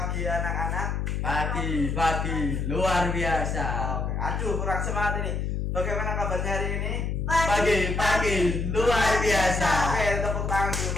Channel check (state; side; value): noise; left; hum, 1 dB below the sound